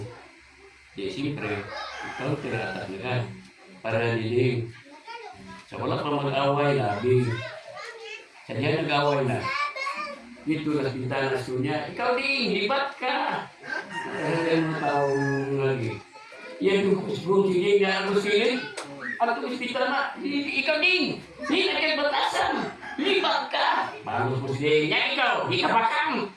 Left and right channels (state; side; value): identical; both; correlation 1.00